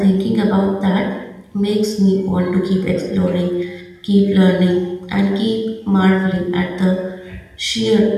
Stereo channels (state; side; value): identical; both; correlation 1.00